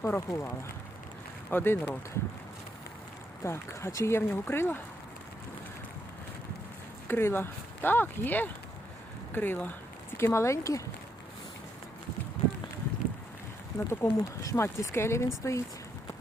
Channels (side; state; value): both; normal; correlation 0.77